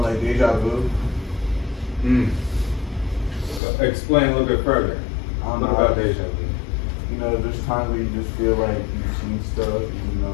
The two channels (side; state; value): right; drops out; at 3.6 s